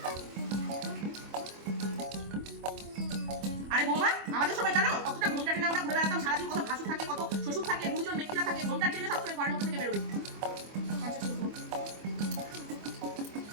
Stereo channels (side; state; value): left; late; 25 ms